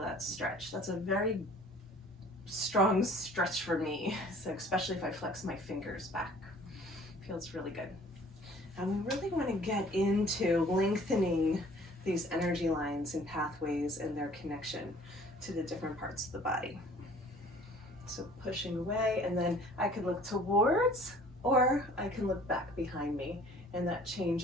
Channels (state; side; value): normal; both; correlation 0.52